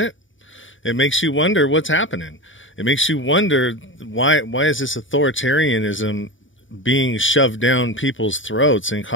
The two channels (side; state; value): right; late; 0.56 ms